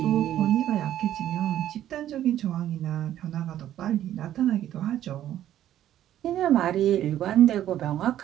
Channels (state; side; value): quieter; left; 12.0 dB